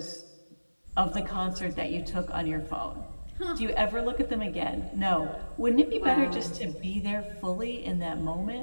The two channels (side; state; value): both; inverted; correlation -1.00